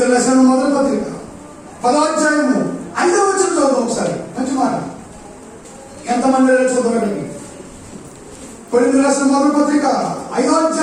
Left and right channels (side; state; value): both; identical; correlation 1.00